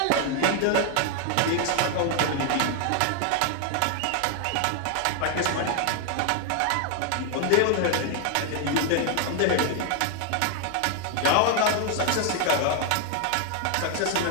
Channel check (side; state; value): both; different; correlation 0.00